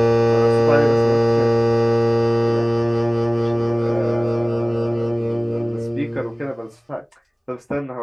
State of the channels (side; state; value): both; identical; correlation 1.00